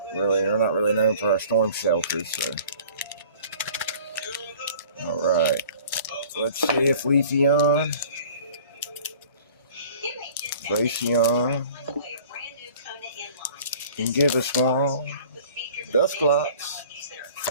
not really known for our storm shelters, so. Alright. Let's see if Leafeon, Glaceon can give us one. Dusclops,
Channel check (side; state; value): both; inverted; correlation -0.47